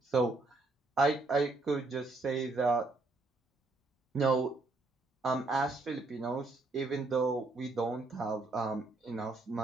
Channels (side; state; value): left; quieter; 3.3 dB